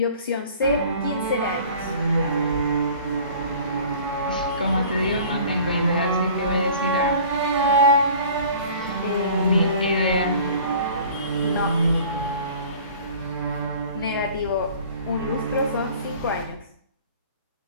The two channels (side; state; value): both; inverted; correlation -0.47